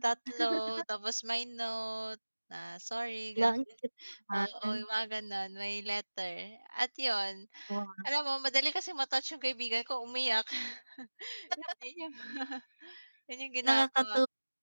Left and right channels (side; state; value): both; inverted; correlation -1.00